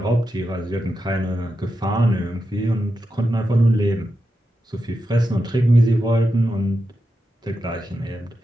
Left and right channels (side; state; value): both; normal; correlation 0.88